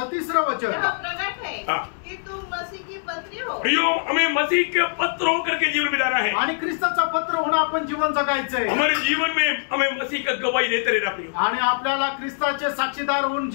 3 वचन, प्रकट है कि तुम मसीह की पत्री हो। प्रियो, हमें मसीह के पत्र होकर के जीवन बिताना है, आणि ख्रिस्ताचं पत्र होऊन आपण जीवन जगायचंय। हमारे जीवन में हमें मसीह का गवाही देते रहना प्रियो, आणि आपल्याला ख्रिस्ताचे साक्षीदार होऊन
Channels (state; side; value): silent; right; digital silence